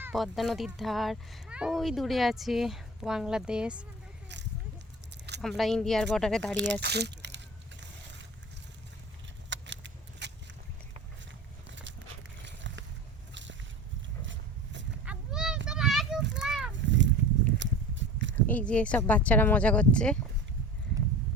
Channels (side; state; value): both; normal; correlation 0.36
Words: পদ্মা নদীর ধার ওই দূরে আছে বাংলাদেশ, আমরা ইন্ডিয়ার বর্ডারে দাঁড়িয়ে আছি। এই যে সব বাচ্চারা মজা করছে।